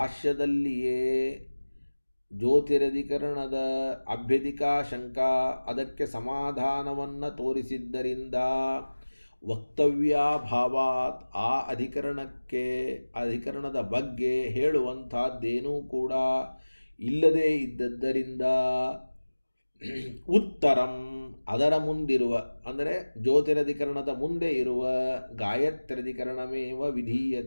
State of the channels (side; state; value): both; inverted; correlation -1.00